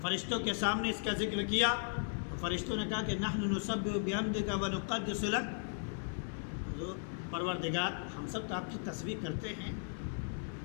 فرشتوں کے سامنے اس کا ذکر کیا تو فرشتوں نے کہا کہ نحن نسبح بحمدک ونقدس لک، پروردگار ہم سب تو آپ کی تسبیح کرتے ہیں،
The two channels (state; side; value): silent; right; digital silence